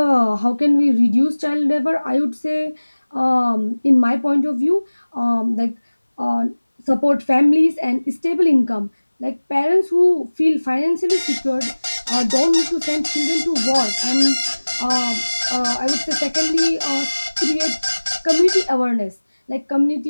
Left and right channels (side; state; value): both; inverted; correlation -1.00